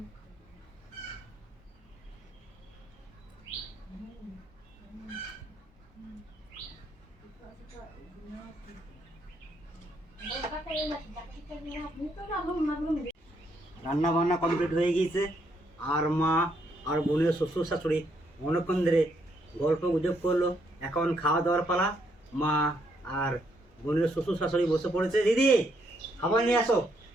রান্না বান্না কমপ্লিট হয়ে গিয়েছে, আর মা আর বোনের শ্বশুর শাশুড়ি অনেকক্ষণ ধরে গল্প গুজব করলো। এখন খাওয়া দাওয়ার পালা। মা আর বোনের শ্বশুর শাশুড়ি বসে পড়েছে। দিদি, খাবার নিয়ে আসো।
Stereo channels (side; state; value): both; normal; correlation 0.74